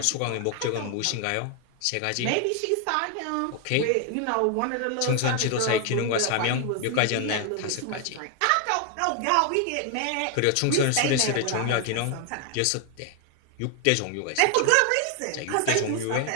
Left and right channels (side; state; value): both; different; correlation 0.00